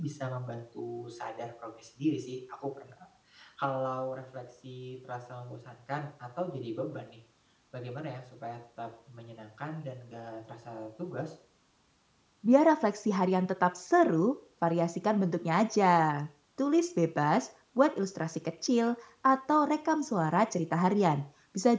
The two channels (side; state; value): both; identical; correlation 1.00